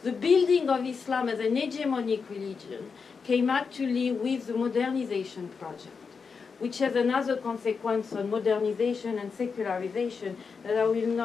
the building of Islam as an hegemonic religion came actually with the modernization project, which has another consequence on modernization and secularization that I will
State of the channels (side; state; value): right; quieter; 5.4 dB